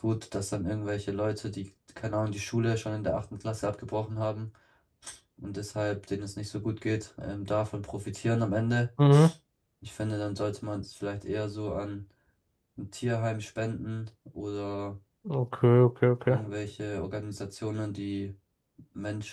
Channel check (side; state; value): both; identical; correlation 1.00